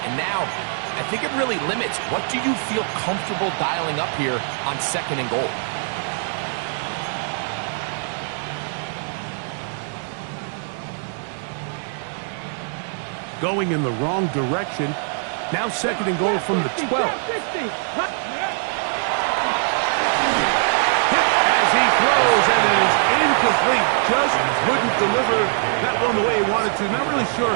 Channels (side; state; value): left; silent; 63 dB below the other